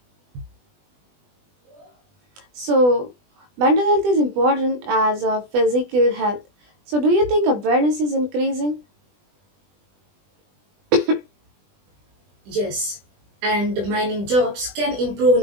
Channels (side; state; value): left; late; 20 ms